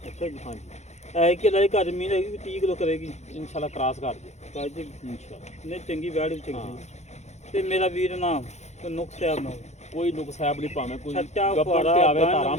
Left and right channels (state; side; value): late; right; 0.33 ms